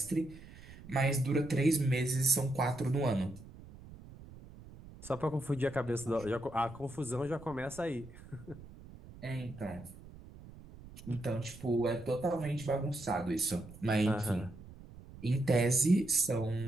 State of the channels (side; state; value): right; noise; rumble, 17 dB below the sound